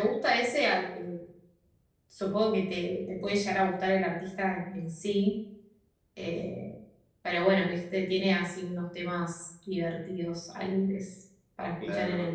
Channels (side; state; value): both; identical; correlation 1.00